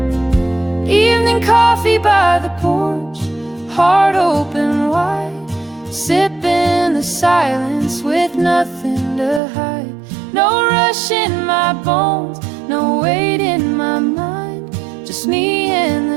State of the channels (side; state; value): left; drops out; at 9.4 s